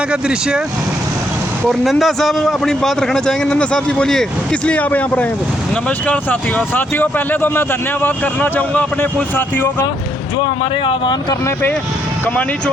का दृश्य है और नंदा साहब अपनी बात रखना चाहेंगे। नंदा साहब जी बोलिए, किस लिए आप यहाँ पर आए हैं? तो नमस्कार साथियों, पहले तो मैं धन्यवाद करना चाहूँगा अपने कुछ साथियों का जो हमारे आह्वान करने पे कमानी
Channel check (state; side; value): normal; both; correlation 0.74